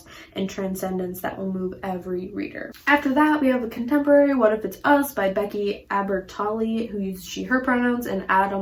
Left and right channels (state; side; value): identical; both; correlation 1.00